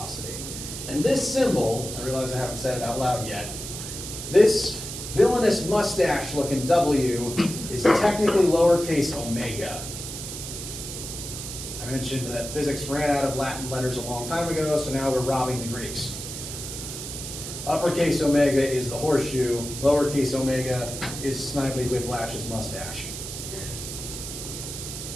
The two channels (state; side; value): noise; right; hiss, 8 dB below the sound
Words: And this symbol, I realize I haven't said it out loud yet, this villainous mustache looking W is technically lowercase omega. I mentioned that physics ran out of Latin letters a long time ago, so now we're robbing the Greeks. Uppercase omega is the horseshoe, lowercase omega is Snidely Whiplash's mustache.